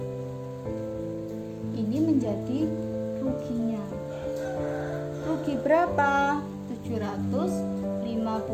Ini menjadi ruginya. Rugi berapa?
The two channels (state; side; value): identical; both; correlation 1.00